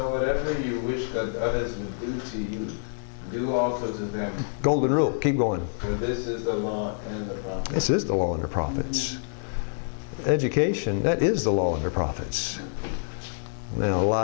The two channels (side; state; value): right; silent; digital silence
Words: whatever you wish that others would do to you, do also to them. Golden rule. Keep going. For this is the law and the prophets. This is the law and the prophets. Education, that is the law and the prophets. Now,